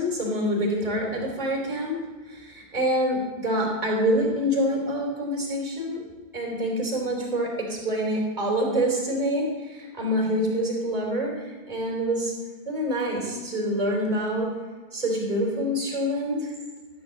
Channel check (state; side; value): late; right; 2.2 ms